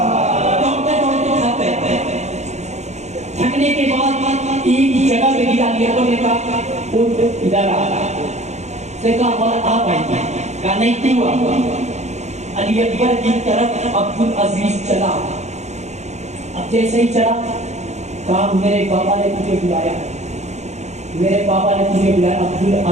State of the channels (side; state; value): left; late; 0.33 ms